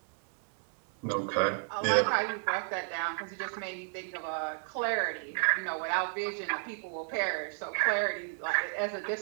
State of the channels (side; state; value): left; silent; 56 dB below the other